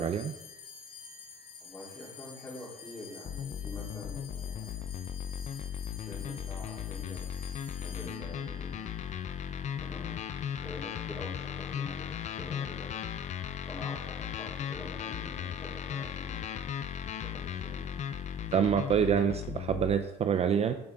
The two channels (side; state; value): both; normal; correlation 0.45